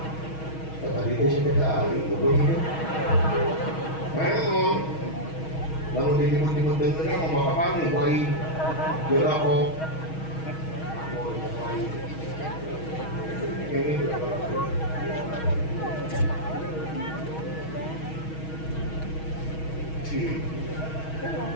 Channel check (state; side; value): late; right; 6.3 ms